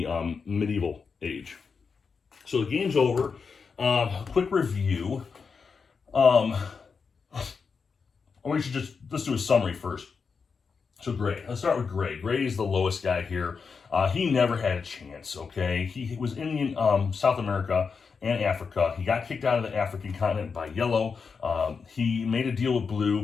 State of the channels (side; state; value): right; quieter; 5.4 dB